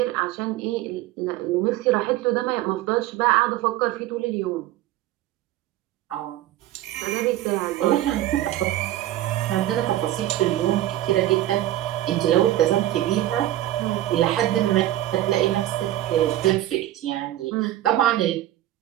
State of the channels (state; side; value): quieter; left; 14.2 dB